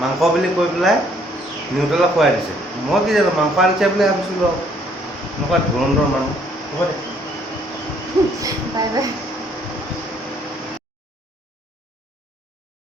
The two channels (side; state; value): both; normal; correlation 0.64